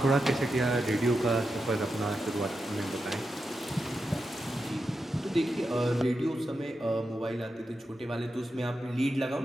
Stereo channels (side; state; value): both; normal; correlation 0.88